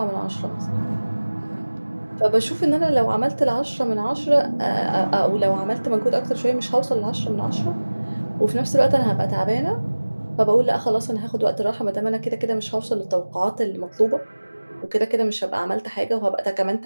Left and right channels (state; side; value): inverted; both; correlation -1.00